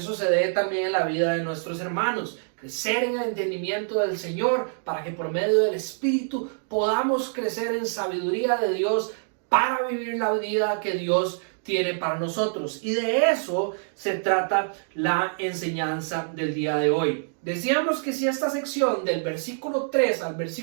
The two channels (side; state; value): left; silent; digital silence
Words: se dé también en la vida de nuestros hermanos. Crecer en el entendimiento del Señor para que por medio del Espíritu podamos crecer en sabiduría de Dios para vivir la vida que Dios tiene para nosotros. Y de eso se trata la enseñanza del día de hoy. Decíamos que si esta sección del versículo 3 al